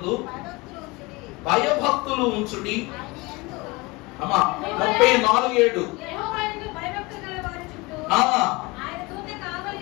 భయభక్తులు ఉంచుడి. అమ్మా 34:7.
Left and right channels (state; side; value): quieter; right; 23.9 dB